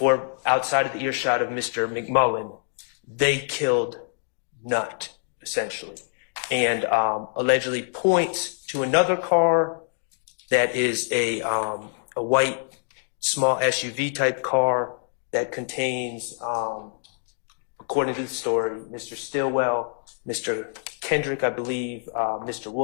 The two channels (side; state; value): right; silent; digital silence